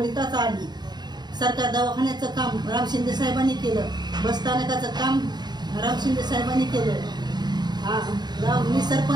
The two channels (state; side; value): late; left; 0.20 ms